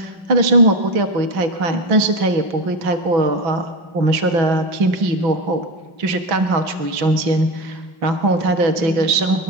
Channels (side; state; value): left; late; 6.1 ms